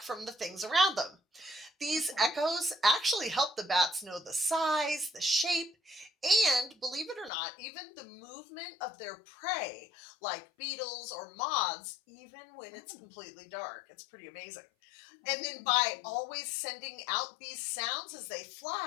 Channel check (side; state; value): right; drops out; at 7.3 s